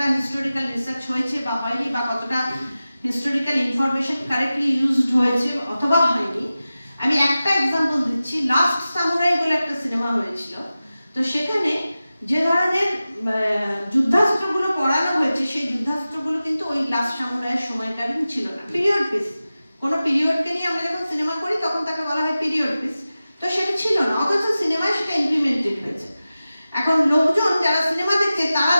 হিস্টোরিক্যাল রিসার্চ হয়েছে বা হয়নি, বা কতটা হিস্টোরিক্যাল ইনফরমেশন কারেক্টলি ইউজড হয়েছে অথবা হয়নি। আমি একটা এক্সাম্পল দিচ্ছি, লাস্ট সামুরাই বলে একটা সিনেমা হয়েছিল। তো সেখানে যে ধরনের যুদ্ধাস্ত্রগুলো পড়ানো হয়েছে, সেই যুদ্ধাস্ত্রগুলো কিন্তু ওই লাস্ট সামুরাইয়ের সময়কালীন ছিল না, পিরিয়ড পিস। কোনো পিরিয়ডকে নিয়ে আমরা যখন সিনেমা করি তখন তাকে বলা হয় পিরিয়ড পিস, তো সেটা ছিল না, অথচ সিনেমায় সেটা ইমপ্লিমেন্টেড হয়েছে। এখন লোকজন যারা সিনেমা দেখছে তারা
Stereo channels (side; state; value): both; inverted; correlation -0.95